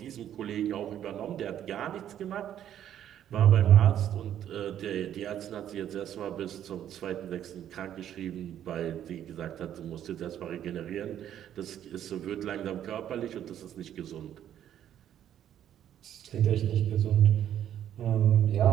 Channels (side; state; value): left; quieter; 10.6 dB